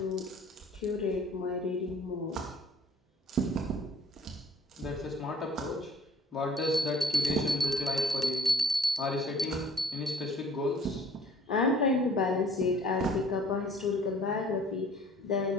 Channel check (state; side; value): normal; both; correlation 0.53